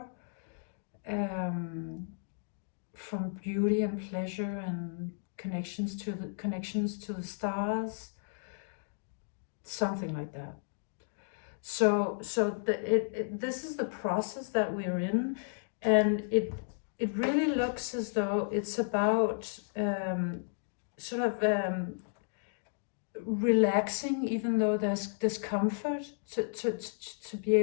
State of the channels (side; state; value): right; silent; digital silence